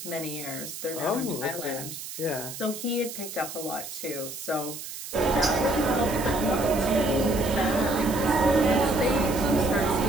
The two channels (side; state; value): right; noise; hiss, 10 dB below the sound